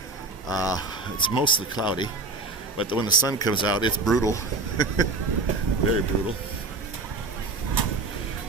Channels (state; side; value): quieter; left; 3.5 dB